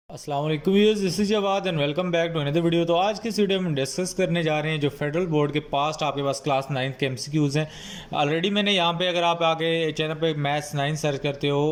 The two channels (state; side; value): identical; both; correlation 1.00